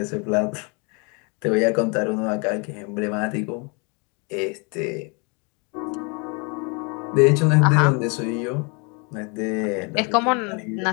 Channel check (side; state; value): right; quieter; 33.0 dB